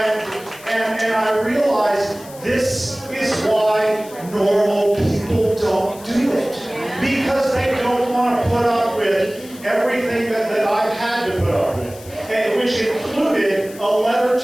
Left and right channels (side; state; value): left; noise; hiss, 19 dB below the sound